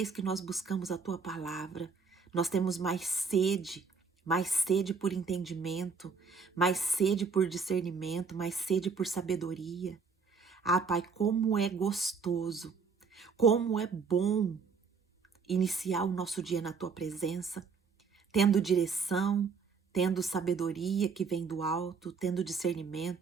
que nós buscamos a tua palavra, nós temos mais sede por entendimento, mais sede por discernimento, mais sede por sabedoria. Ah, Pai, como é gostoso, como é bom iniciar o nosso dia na tua presença, tendo direção, tendo sabedoria que vem do alto, tendo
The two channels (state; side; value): quieter; left; 5.3 dB